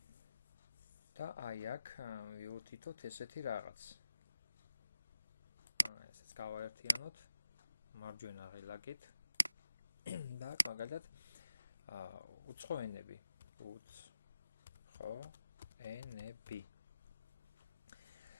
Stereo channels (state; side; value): inverted; both; correlation -0.90